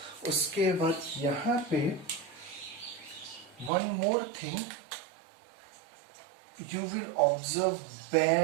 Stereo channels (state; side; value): drops out; left; at 3.7 s